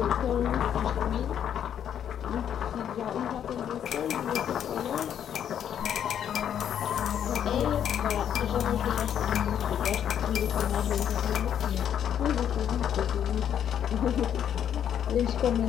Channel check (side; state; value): right; quieter; 9.3 dB